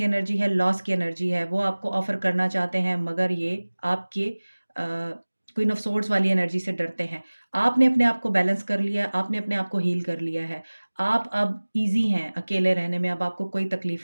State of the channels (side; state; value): both; inverted; correlation -1.00